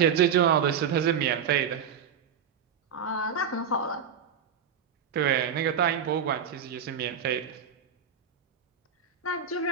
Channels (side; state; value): left; quieter; 7.2 dB